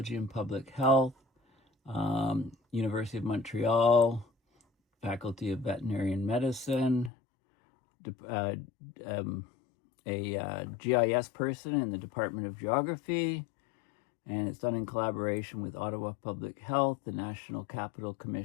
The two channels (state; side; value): drops out; right; at 7.1 s